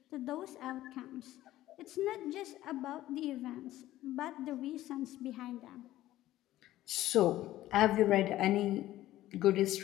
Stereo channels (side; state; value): right; quieter; 14.8 dB